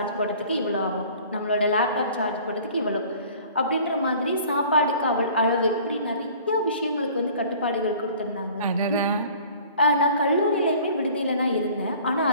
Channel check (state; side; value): inverted; both; correlation -0.49